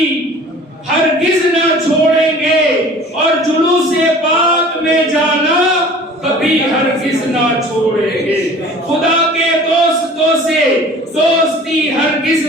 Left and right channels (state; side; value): normal; both; correlation 0.45